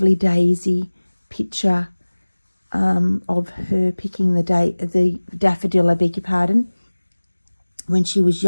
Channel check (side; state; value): both; inverted; correlation -1.00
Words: daisy picture of her picking the daffodil, I beg your pardon, when she was